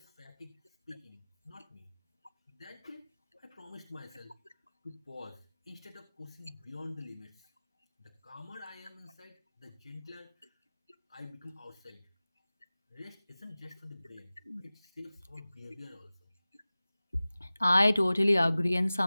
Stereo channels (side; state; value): both; inverted; correlation -0.98